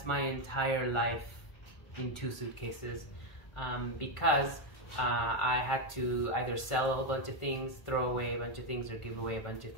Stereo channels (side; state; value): right; late; 1.5 ms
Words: my entire life in 2 suitcases because I had to either sell a whole bunch of things, throw away a bunch of things, or give away a bunch of